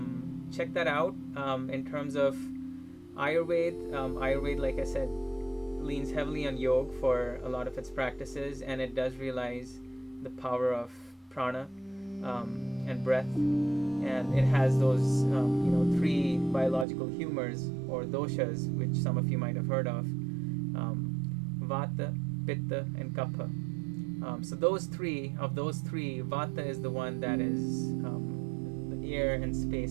check that out. In terms of Ayurveda, Ayurveda, like I said, leans heavily on yoga for a lot of its practices, and it does realize the power of prana and breath, and it has those three biological humors or doshas, which some of you might have heard of, vata, pitta, and kapha. So those three, vata is the one that is the air and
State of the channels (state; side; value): drops out; left; at 16.9 s